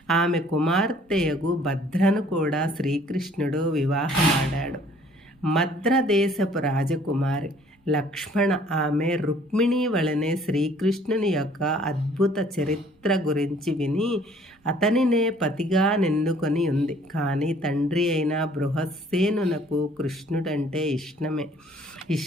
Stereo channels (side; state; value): both; normal; correlation 0.58